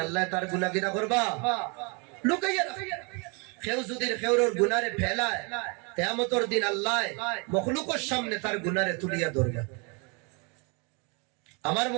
আল্লাহ তার গুনাহ কিনা করবা লুকাইয়া রাখে কেউ যদি কেউর গুনারে ফেলায় কিয়ামতের দিন আল্লাহ মখলুকের সামনে তার গুনারে তুলিয়া ধরবে আমার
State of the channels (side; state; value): left; quieter; 33.0 dB